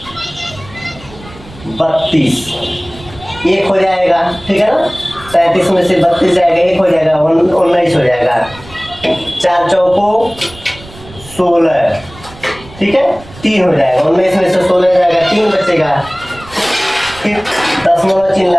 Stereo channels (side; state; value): right; noise; rumble, 19 dB below the sound